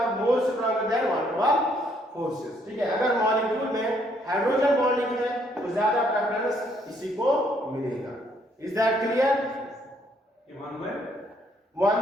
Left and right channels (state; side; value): normal; both; correlation 0.68